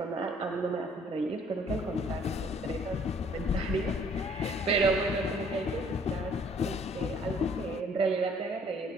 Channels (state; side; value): normal; both; correlation 0.58